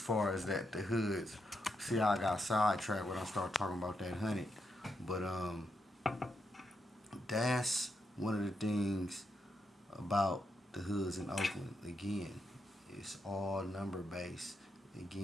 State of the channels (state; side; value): normal; both; correlation 0.82